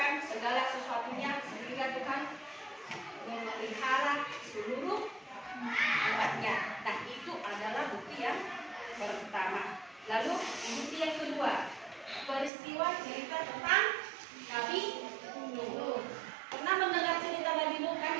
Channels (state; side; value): drops out; left; at 12.5 s